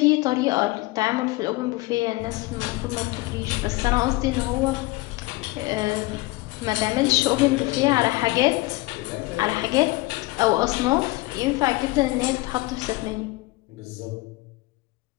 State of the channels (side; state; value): right; quieter; 21.2 dB